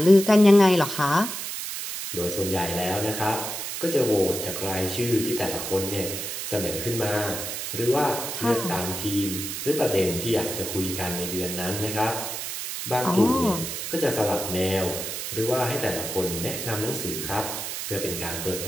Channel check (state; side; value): noise; right; hiss, 5 dB below the sound